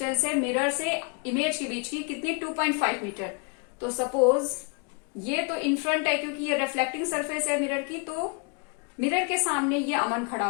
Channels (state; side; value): quieter; right; 34.7 dB